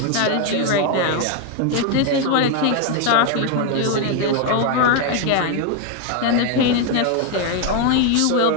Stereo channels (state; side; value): different; both; correlation 0.01